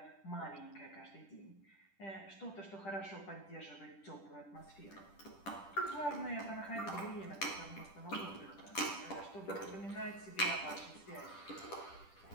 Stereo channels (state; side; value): late; right; 10 ms